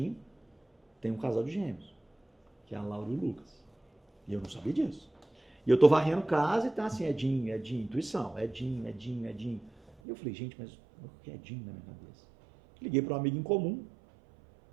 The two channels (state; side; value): drops out; left; at 10.0 s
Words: tem um casal de gêmeos, que é a Laura e o Lucas. E eu não sabia disso. E eu tô varrendo casa e tá assim, Edinho, intuição, Edinho. E eu falei, gente, mas o que é Edinho na minha cabeça? Liguei para um amigo em comum,